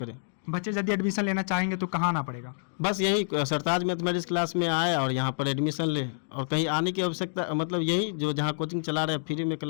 बच्चे यदि एडमिशन लेना चाहेंगे तो कहाँ आना पड़ेगा? बस यही सरताज मैथमेटिक्स क्लास में आए और यहाँ पर एडमिशन ले, और कहीं आने की आवश्यकता मतलब यही जो जहाँ कोचिंग चला रहे हैं फ्री में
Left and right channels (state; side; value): silent; right; digital silence